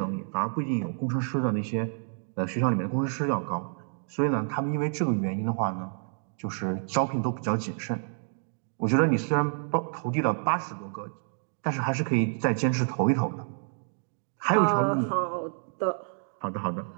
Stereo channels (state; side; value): silent; left; 59 dB below the other